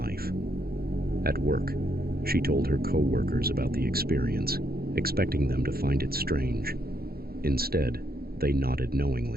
At work, she told her co-workers about the experience, expecting them to find it strange. Instead, they nodded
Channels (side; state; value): left; late; 0.44 ms